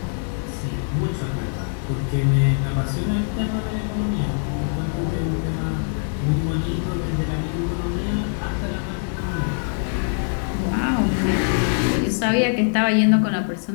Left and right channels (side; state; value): right; silent; 63 dB below the other